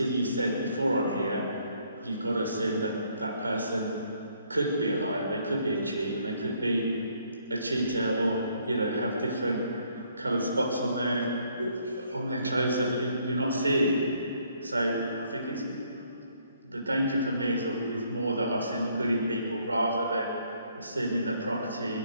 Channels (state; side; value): inverted; both; correlation -0.67